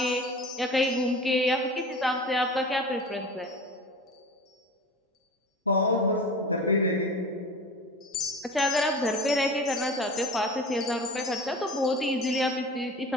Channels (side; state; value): both; normal; correlation 0.36